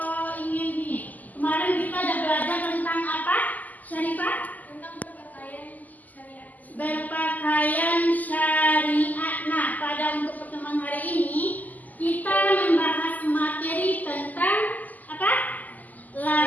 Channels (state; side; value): late; right; 0.081 ms